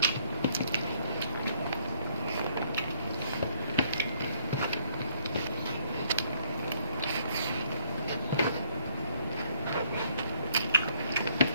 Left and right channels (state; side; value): inverted; both; correlation -0.65